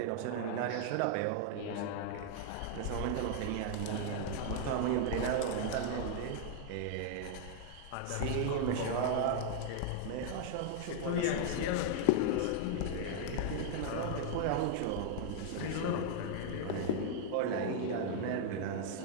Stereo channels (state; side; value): different; both; correlation 0.00